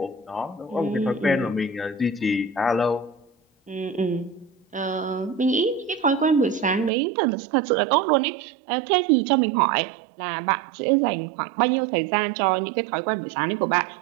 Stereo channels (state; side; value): drops out; left; at 6.9 s